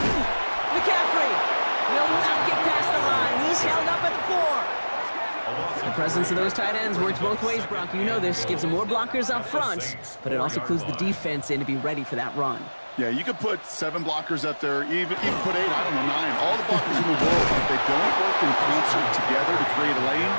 McCaffrey will not get past the line. He's held up at the 4. The presence of those tight ends works both ways, Brock. You know this. Gives them more blockers up front, but it also clues the defense in to be ready for that run. Yeah, you could put 7 blockers up there, even put 8, I don't know, 9. All the blockers in the world, if they don't work in concert together to create a lane,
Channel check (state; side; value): inverted; both; correlation -1.00